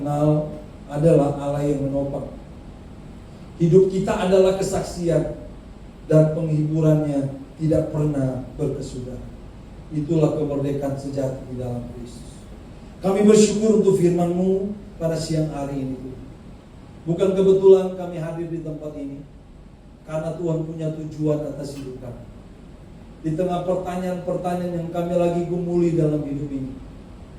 adalah Allah yang menopang. Hidup kita adalah kesaksian dan penghiburannya tidak pernah berkesudahan. Itulah kemerdekaan sejati di dalam Kristus. Kami bersyukur untuk firman-Mu pada siang hari ini. Bukan kebetulan kami hadir di tempat ini, karena Tuhan punya tujuan atas hidup kami. Di tengah pertanyaan-pertanyaan yang kami lagi gumuli dalam hidup ini,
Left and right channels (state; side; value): identical; both; correlation 1.00